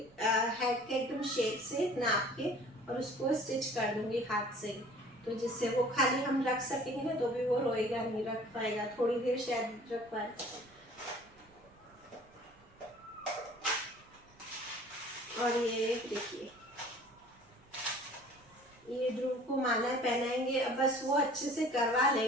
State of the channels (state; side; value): noise; right; rumble, 30 dB below the sound